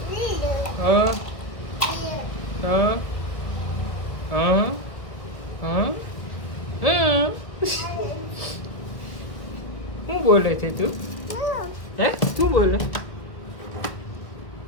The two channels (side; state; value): right; late; 1.4 ms